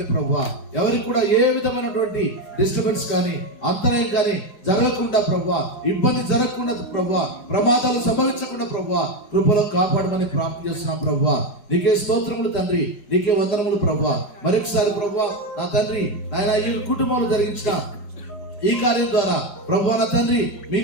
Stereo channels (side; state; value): right; late; 5.2 ms